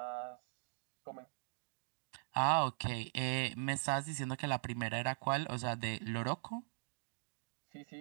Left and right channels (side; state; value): left; silent; digital silence